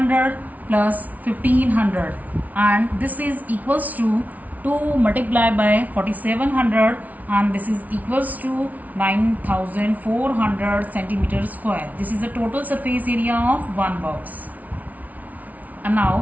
plus 1500, and this is equals to 2 multiplied by 4700, and this is equals to 9400 centimeter square. This is the total surface area of one box. And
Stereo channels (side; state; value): left; late; 0.074 ms